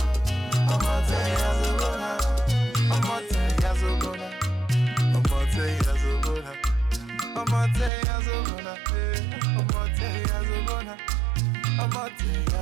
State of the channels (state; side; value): drops out; left; at 7.9 s